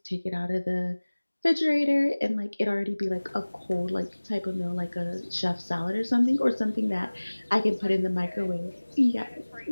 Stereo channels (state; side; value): inverted; both; correlation -1.00